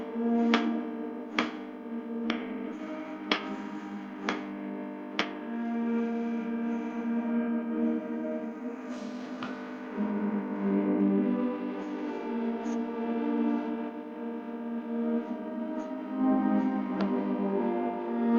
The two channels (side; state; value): both; identical; correlation 1.00